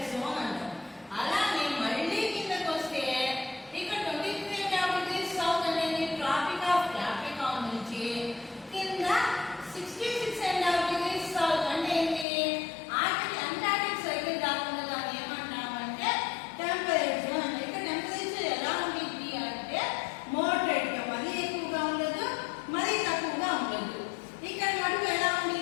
జోన్ అంటాం. అలాగే మళ్ళీ కిందకు వస్తే ఇక్కడ 23.5 degrees సౌత్ అనేది ట్రాపిక్ ఆఫ్ క్యాప్రికాన్ నుంచి కింద 66.5 degrees సౌత్ అంటే ఏంటి? అంటార్టిక్ సర్కిల్ దాకా దాన్ని ఏమంటామంటే టెంపరేట్ జోన్ అంటే. ఇక్కడ టెంపరేచర్ ఎలా ఉంటుంది అంటే మోడరేట్ గా, మరీ ఎక్కువగా ఉండదు, మరీ తక్కువగా ఉండదు. ఇక్కడ మటుకు ఎలా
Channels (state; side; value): drops out; right; at 12.2 s